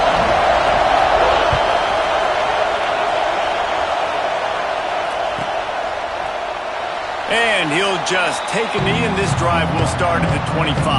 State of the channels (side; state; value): both; identical; correlation 1.00